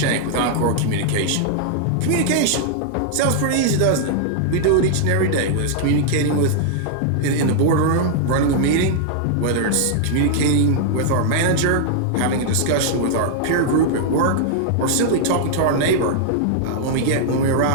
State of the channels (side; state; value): both; different; correlation -0.01